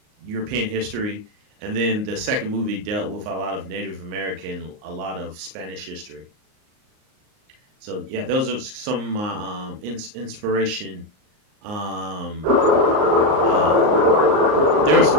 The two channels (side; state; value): left; late; 38 ms